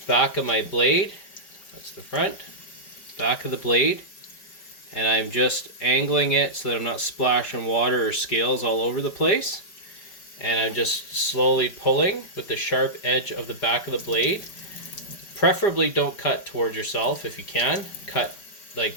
Back of my blade, that's the front, back of the blade, and I'm just angling it so that I'm not splashing water or scales all over the place. And I'm just slowly pulling with the sharp edge of the back of the blade. Preferably don't cut towards yourself if you can. Cut, like,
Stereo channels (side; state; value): right; late; 5.2 ms